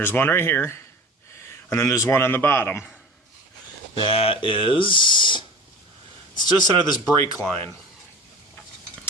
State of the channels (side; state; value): both; normal; correlation 0.37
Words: one right here, and then there's one on the bottom. It's just under this brake line.